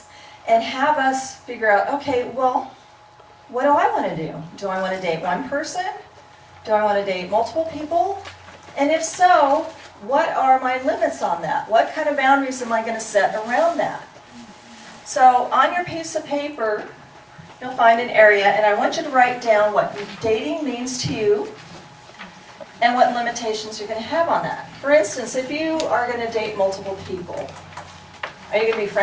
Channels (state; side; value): identical; both; correlation 1.00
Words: and have us figure out, okay, well, what do I want to do? Do I want to date one person? Do I want to date multiple people? And if so, what are my limits on that? What kind of boundaries am I going to set around that? So on your piece of paper, you'll find an area, and I want you to write down what dating means to you and what limitations you're going to have on that. For instance, if you are going to date multiple people, are you going to be